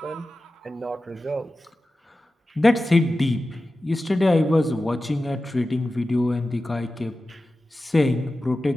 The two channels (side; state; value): both; normal; correlation 0.94